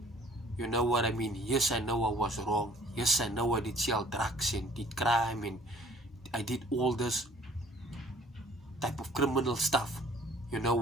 You know what I mean? Yes, I know I was wrong. Yes, I know I did sell drugs and did crime and I did all this type of criminal stuff. You know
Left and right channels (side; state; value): both; normal; correlation 0.55